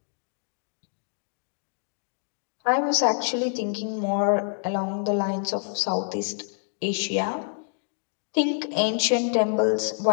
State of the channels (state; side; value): silent; right; digital silence